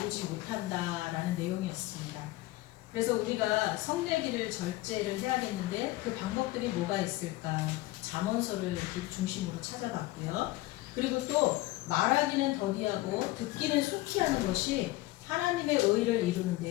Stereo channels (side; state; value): right; quieter; 18.6 dB